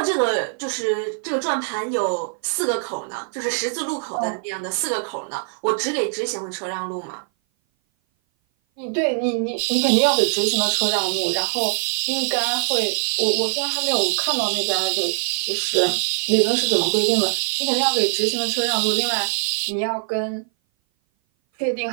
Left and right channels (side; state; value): left; silent; 58 dB below the other